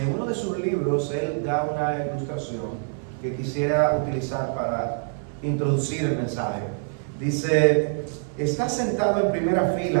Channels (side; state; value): left; silent; 59 dB below the other